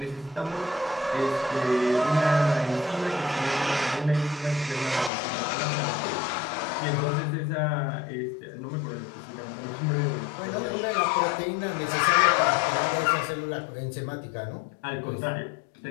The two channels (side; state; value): right; drops out; at 5.1 s